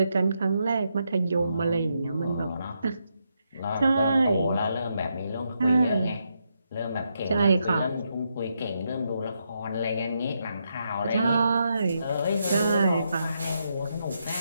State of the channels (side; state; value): both; inverted; correlation -0.81